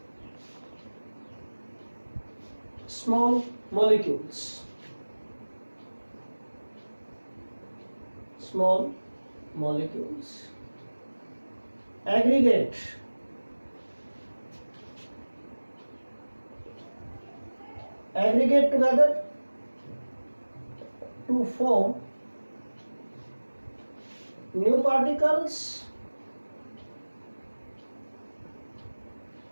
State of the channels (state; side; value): inverted; both; correlation -1.00